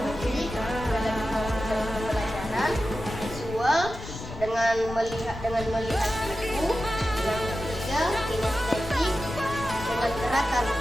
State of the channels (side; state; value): left; noise; rumble, 11 dB below the sound